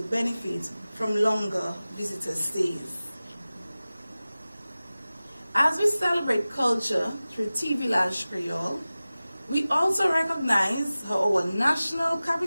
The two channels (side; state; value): both; inverted; correlation -0.97